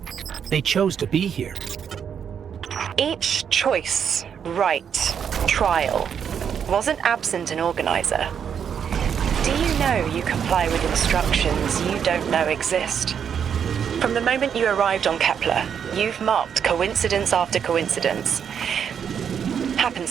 They chose to be here. Each choice, right, trial, wasn't absent an organizer. Do you know you comply with instructions you don't know exist? From the moment you arrived on Kepler, you've marked coincidence after coincidence.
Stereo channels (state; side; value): quieter; left; 7.8 dB